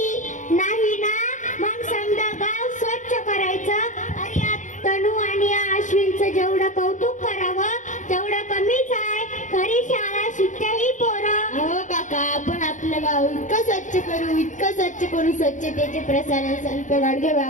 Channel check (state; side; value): late; right; 0.36 ms